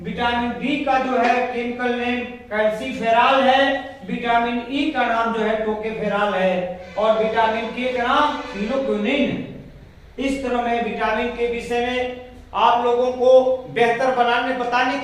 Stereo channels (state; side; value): identical; both; correlation 1.00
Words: विटामिन बी का जो है केमिकल नेम कैल्सीफेरॉल है। विटामिन ई का नाम जो है टोकोफेरॉल है और विटामिन के का नाम फिनोक्विनोन है। इस तरह मैं विटामिन के विषय में आप लोगों को बेहतर बताने